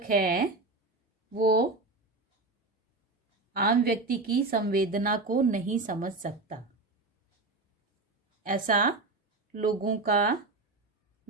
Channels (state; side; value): quieter; left; 3.4 dB